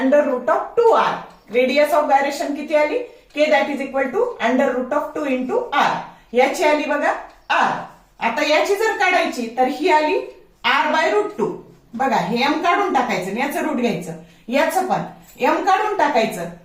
रेडियस ऑफ गायरेशन किती आली? k that is equal to √2 into r. याची आली बघा r. आता याची जर काढायची तर ही आली r/√2. बघा हे m काढून टाकायचं आणि याचं रूट घ्यायचं, याचं पण m काढून टाकायचं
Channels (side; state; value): both; identical; correlation 1.00